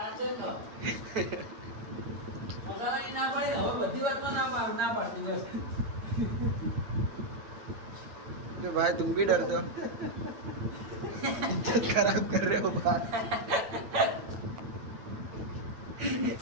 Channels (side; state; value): left; late; 8.9 ms